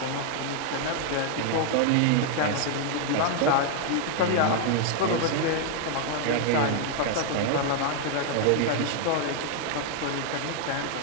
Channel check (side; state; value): both; different; correlation 0.00